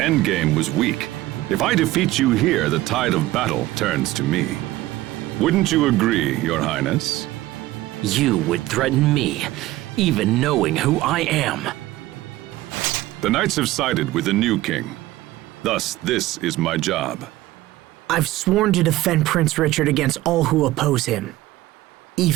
was weak. If I defeat you here, the tide of battle turns to me. Wouldn't you agree, Your Highness? You would threaten me, even knowing who I am. The knights have sided with the new king. Thus, this is my job. I've sworn to defend Prince Richard against all who oppose him.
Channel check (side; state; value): left; quieter; 16.9 dB